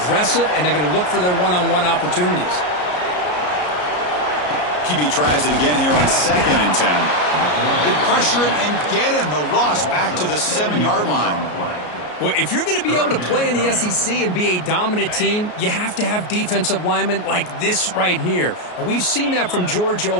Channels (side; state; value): right; late; 33 ms